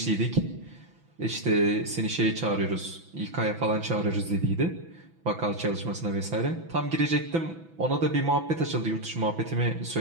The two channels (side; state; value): left; late; 6.0 ms